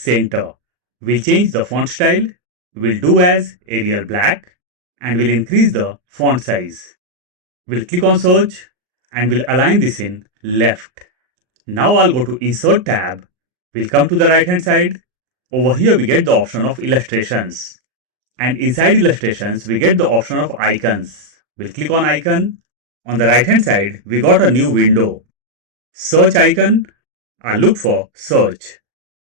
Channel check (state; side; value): late; left; 38 ms